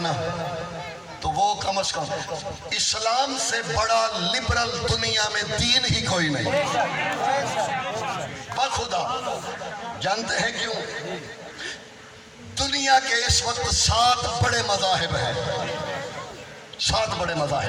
تو وہ کم از کم اسلام سے بڑا لبرل دنیا میں دین ہی کوئی نہیں. بخدا جانتے ہیں کیوں؟ دنیا کے اس وقت 7 بڑے مذاہب ہیں. 7 بڑے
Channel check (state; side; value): identical; both; correlation 1.00